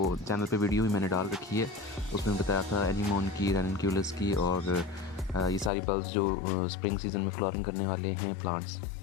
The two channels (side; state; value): right; drops out; at 5.7 s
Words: चैनल पे वीडियो भी मैंने डाल रखी है, उसमें बताया था एनीमोन की, रेनक्यूलस की और ये सारी बल्ब्स जो स्प्रिंग सीज़न में फ्लावरिंग करने वाले हैं प्लांट्स,